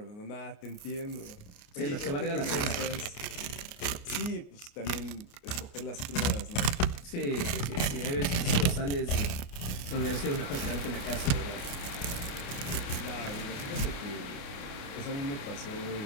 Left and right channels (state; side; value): late; right; 28 ms